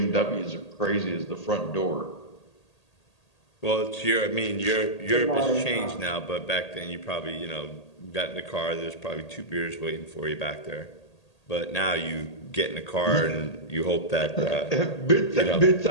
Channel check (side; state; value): right; late; 1.8 ms